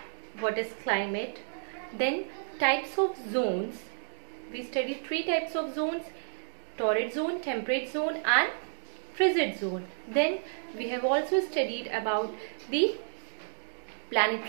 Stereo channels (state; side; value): silent; left; digital silence